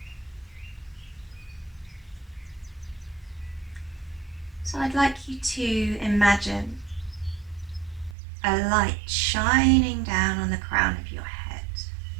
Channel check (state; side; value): drops out; left; at 8.2 s